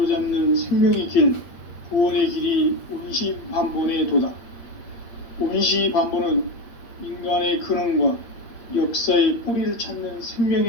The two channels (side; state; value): right; late; 8.3 ms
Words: 생명의 길, 구원의 길이 온시반본의 도다. 온시반본은 인간의 근원과 역사의 뿌리를 찾는